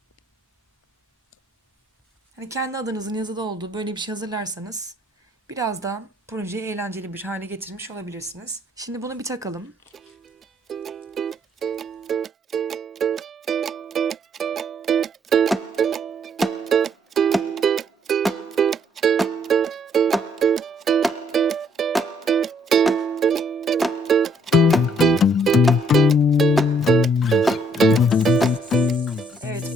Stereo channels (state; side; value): normal; both; correlation 0.67